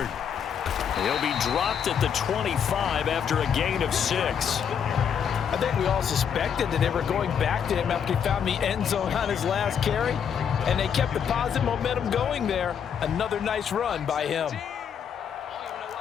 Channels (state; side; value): quieter; right; 7.8 dB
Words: He'll be dropped at the 25 after a gain of 6. I think we all suspected that they were going back to him after he found the end zone on his last carry. And they kept the positive momentum going there. Another nice run by him.